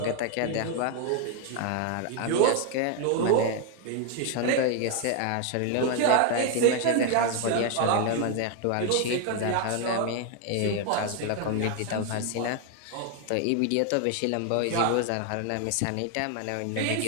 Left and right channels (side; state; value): both; different; correlation 0.00